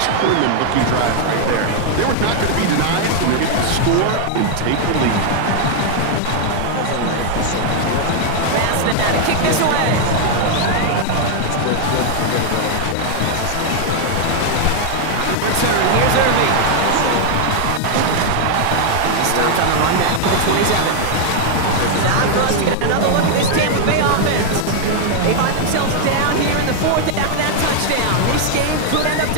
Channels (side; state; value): both; different; correlation 0.00